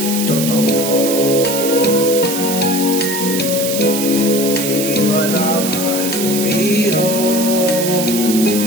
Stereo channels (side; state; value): right; noise; hiss, 4 dB below the sound